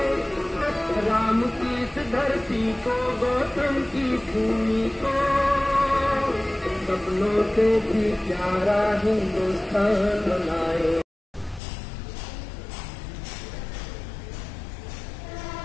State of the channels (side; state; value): right; drops out; at 11.6 s